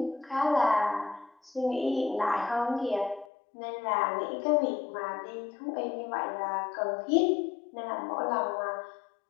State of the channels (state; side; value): drops out; right; at 3.2 s